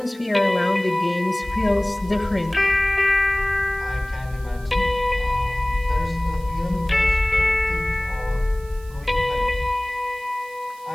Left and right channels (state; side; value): noise; right; hiss, 24 dB below the sound